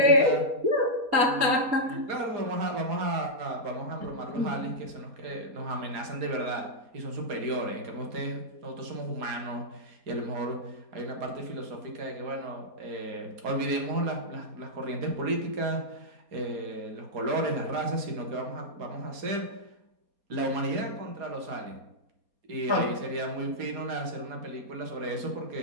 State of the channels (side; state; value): left; late; 4.2 ms